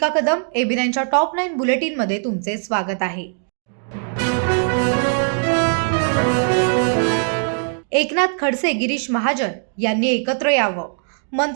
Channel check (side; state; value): left; silent; 62 dB below the other